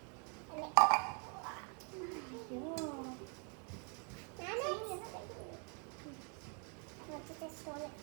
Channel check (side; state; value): left; quieter; 38.2 dB